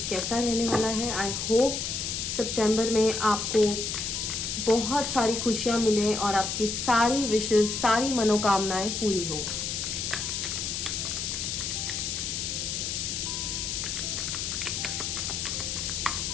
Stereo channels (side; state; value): left; noise; hiss, 2 dB below the sound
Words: कैसा रहने वाला है. आई होप सितंबर में आपको बहुत सारी खुशियाँ मिलें और आपकी सारी विशेज़, सारी मनोकामनाएं पूरी हो.